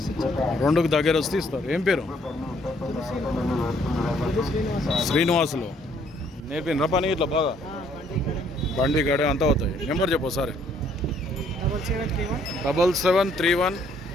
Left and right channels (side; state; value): both; normal; correlation 0.65